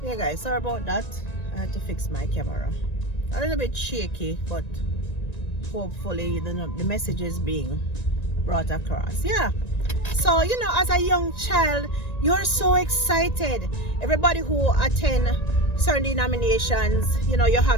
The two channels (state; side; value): late; right; 1.9 ms